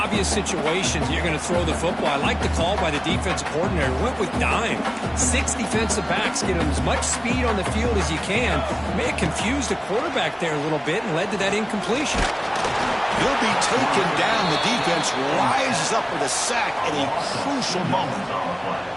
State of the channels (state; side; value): identical; both; correlation 1.00